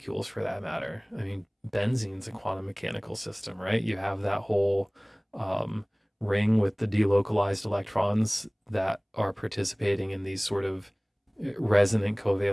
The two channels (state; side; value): identical; both; correlation 1.00